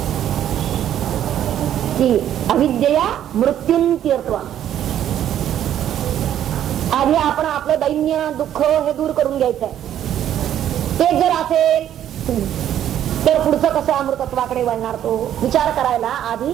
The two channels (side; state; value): left; quieter; 10.8 dB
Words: की अविद्यया मृत्युंत्यर्थवा. आधी आपण आपलं दैन्य दुःख हे दूर करून घ्यायचंय. ते जर असेल तर पुढचं कसं अमृतत्वाकडे वळणार तो विचार करायला आधी